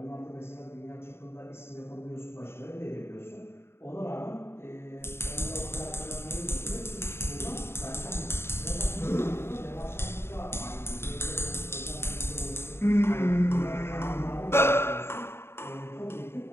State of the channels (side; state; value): right; late; 0.12 ms